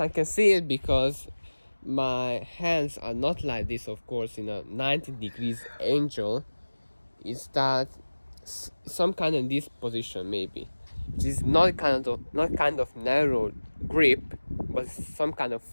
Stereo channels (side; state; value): both; inverted; correlation -1.00